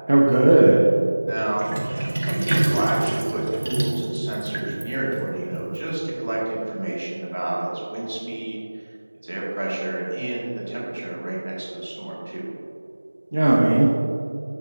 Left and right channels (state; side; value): inverted; both; correlation -1.00